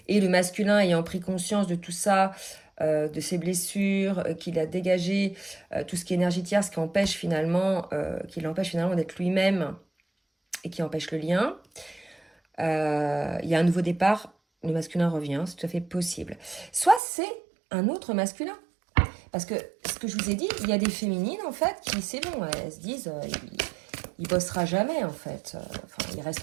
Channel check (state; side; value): drops out; left; at 17.0 s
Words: et le masculin ayant pris conscience de tout ça, de ses blessures, qu'il a dégagé tout ce qui est énergie tierce, qui empêche finalement, qui l'empêche finalement d'être lui-même et qui empêche le lien. Il y a un nouveau départ, le masculin revient, c'est tout à fait possible. Soit c'est un autre masculin. Parce que ce que je vous ai dit, il y a des féminines en fait qui, c'est bon, elles se disent... il bossera jamais en fait. Il